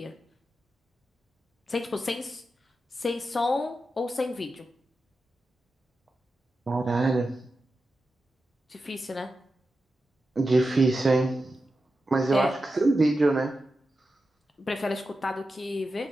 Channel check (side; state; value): both; normal; correlation 0.91